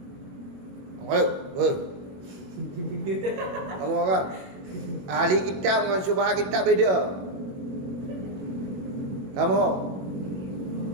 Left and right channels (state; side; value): late; left; 21 ms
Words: Kamu apa? Ahli kitab dengan syubhat kitab beda. Kamu?